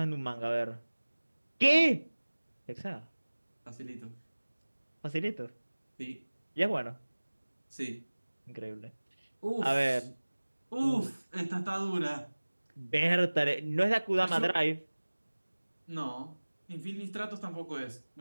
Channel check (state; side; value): inverted; both; correlation -1.00